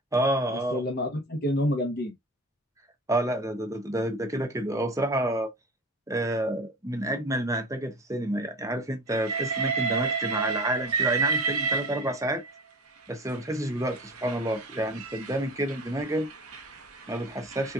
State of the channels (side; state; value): both; normal; correlation 0.36